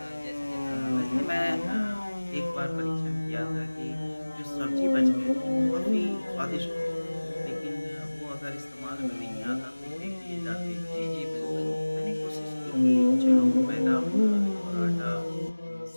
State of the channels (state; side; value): inverted; both; correlation -1.00